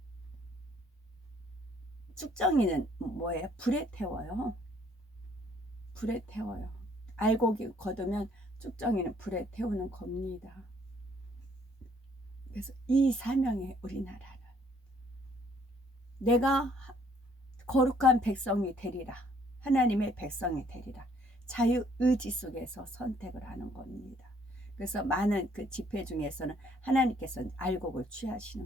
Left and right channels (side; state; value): both; normal; correlation 0.63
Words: 쭉정이는 뭐예요? 불에 태워요. 불에 태워요. 알곡이 거두면 쭉정이는 불에 태우는 겁니다. 그래서 이 사명에 우리나라는 내가 거룩한 백성이 되리라. 하나님의 백성이 되리라. 자유의지 속에서 선택을 하는 겁니다. 그래서 많은 그 집회 중에서는 하나님께서 알곡을